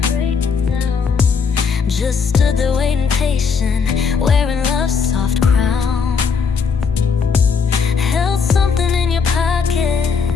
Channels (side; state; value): right; quieter; 5.6 dB